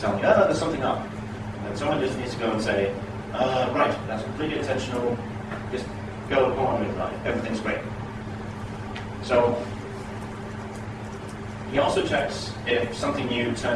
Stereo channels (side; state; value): both; identical; correlation 1.00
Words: me, oh, there's something up. And someone just needs to go and say, right, that's completely intentional. Just go on with life. Everything's great. So he also checks if something new